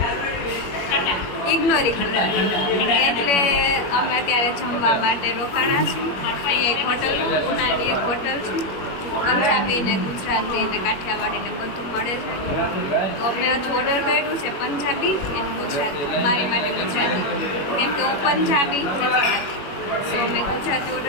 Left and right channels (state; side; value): late; right; 21 ms